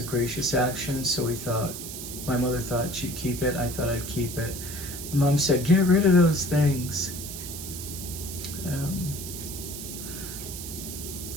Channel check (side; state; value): right; noise; hiss, 8 dB below the sound